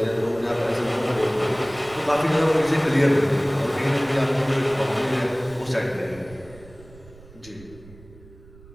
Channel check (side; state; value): right; noise; rumble, 21 dB below the sound